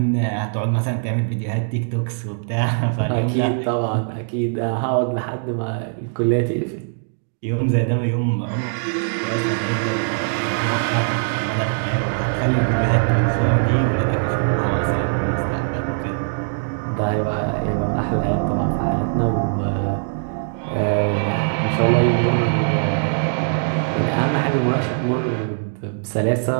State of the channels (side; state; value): left; silent; digital silence